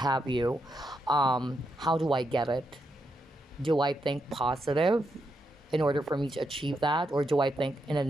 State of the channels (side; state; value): both; normal; correlation 0.82